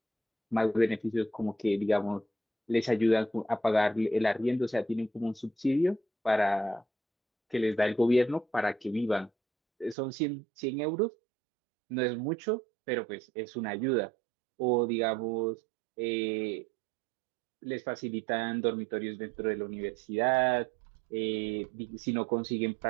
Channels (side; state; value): left; drops out; at 10.0 s